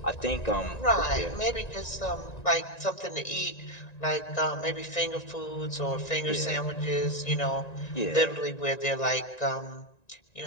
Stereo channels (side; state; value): right; late; 1.9 ms